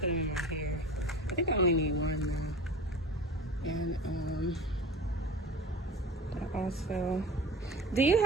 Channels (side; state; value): both; normal; correlation 0.35